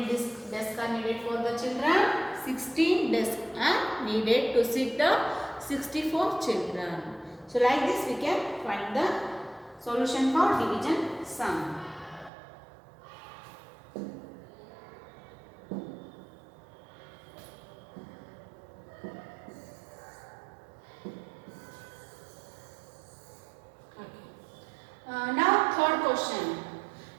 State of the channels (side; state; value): left; drops out; at 12.3 s